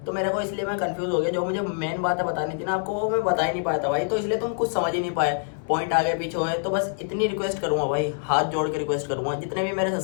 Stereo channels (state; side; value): silent; right; 61 dB below the other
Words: तो मेरे को इसलिए मैं कंफ्यूज हो गया। जो मुझे मेन बातें बतानी थी ना आपको, वो मैं बता ही नहीं पाया था भाई, तो इसलिए तुम कुछ समझ ही नहीं पाए, पॉइंट आगे पीछे हुए। तो बस इतनी रिक्वेस्ट करूंगा भाई, हाथ जोड़ के रिक्वेस्ट करूंगा, जितने भी मेरे